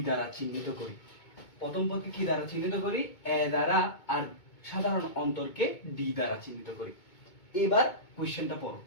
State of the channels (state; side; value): late; right; 2.2 ms